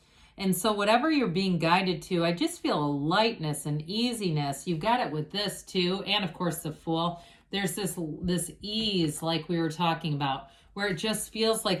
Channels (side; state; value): both; identical; correlation 1.00